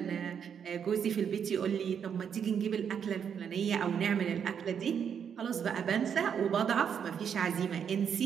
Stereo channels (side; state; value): left; quieter; 7.7 dB